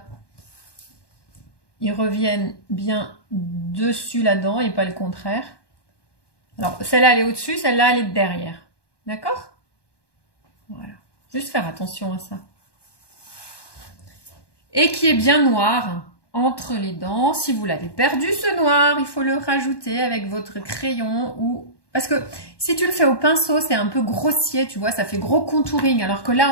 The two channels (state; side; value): late; right; 1.1 ms